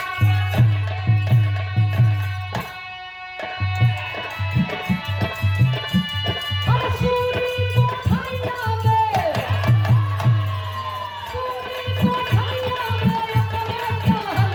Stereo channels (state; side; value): identical; both; correlation 1.00